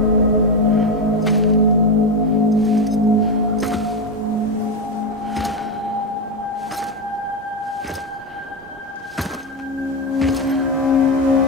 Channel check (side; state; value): both; normal; correlation 0.11